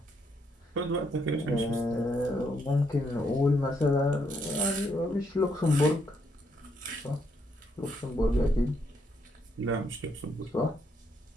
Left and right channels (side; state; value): both; normal; correlation 0.74